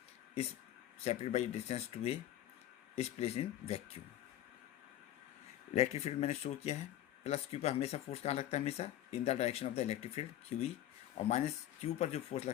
is separated by distance two A is place in vacuum. Electric field मैंने show किया है, plus Q पर हमेशा फोर्स कहाँ लगता है, हमेशा in the direction of the electric field Q E, और माइनस क्यू पर जो फोर्स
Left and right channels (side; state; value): right; quieter; 12.5 dB